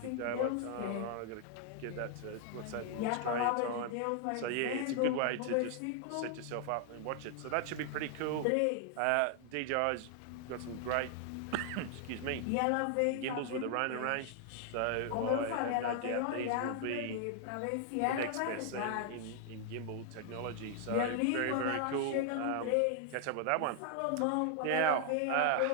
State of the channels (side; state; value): both; different; correlation 0.00